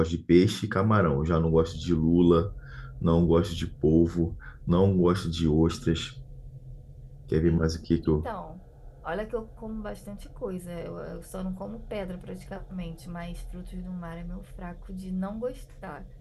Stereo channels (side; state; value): both; identical; correlation 1.00